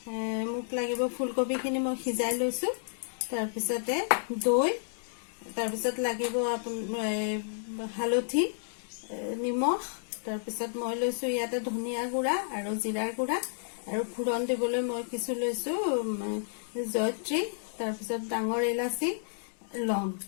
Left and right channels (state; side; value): silent; right; digital silence